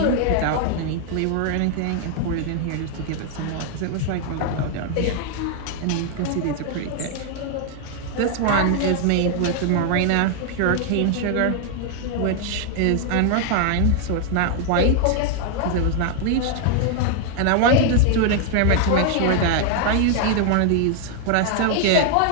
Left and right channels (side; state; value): both; different; correlation 0.00